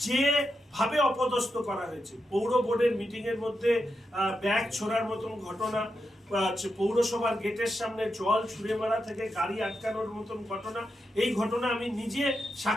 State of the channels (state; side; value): normal; both; correlation 0.87